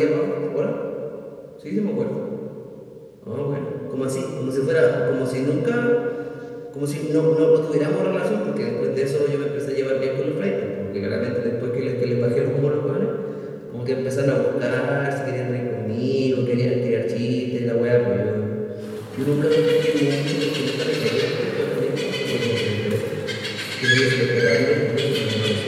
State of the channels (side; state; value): both; identical; correlation 1.00